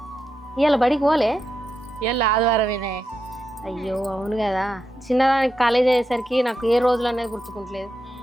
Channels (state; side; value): normal; both; correlation 0.86